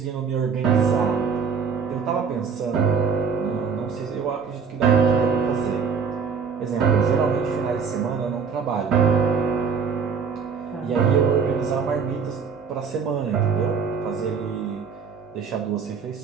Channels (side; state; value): left; quieter; 6.0 dB